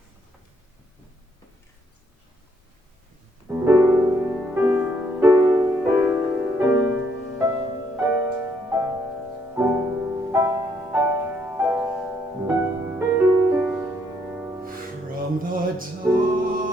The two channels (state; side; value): normal; both; correlation 0.71